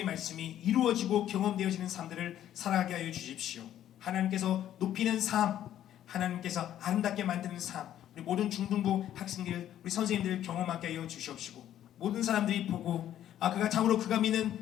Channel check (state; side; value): quieter; right; 11.4 dB